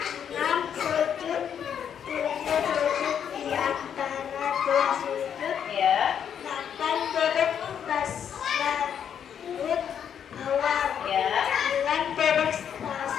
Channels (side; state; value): right; quieter; 8.4 dB